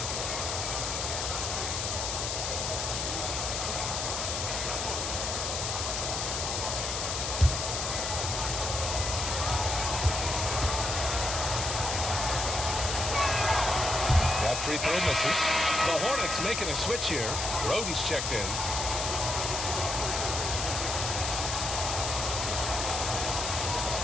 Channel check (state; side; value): noise; left; hiss, 2 dB below the sound